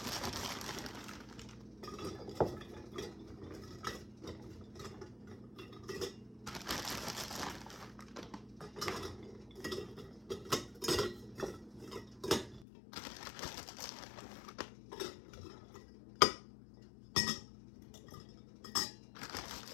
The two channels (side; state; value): right; drops out; at 12.7 s